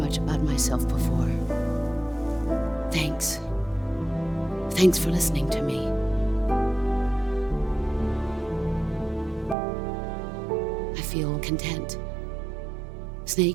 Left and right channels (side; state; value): left; drops out; at 9.6 s